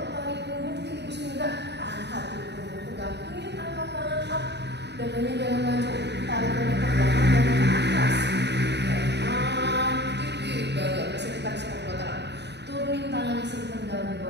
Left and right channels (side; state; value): left; late; 0.50 ms